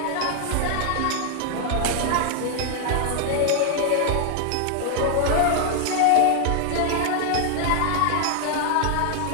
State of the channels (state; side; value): different; both; correlation 0.00